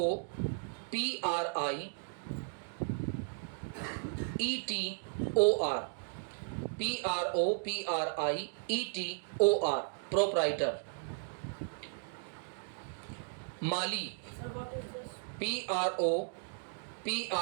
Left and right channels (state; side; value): silent; left; digital silence